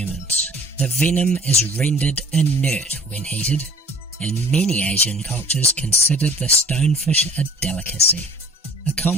The venom is rendered inert when heated, and many Asian cultures consider the stonefish a delicacy. A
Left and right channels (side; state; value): both; normal; correlation 0.50